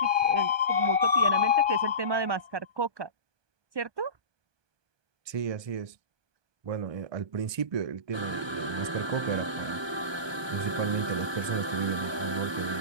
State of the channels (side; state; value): left; late; 1.2 ms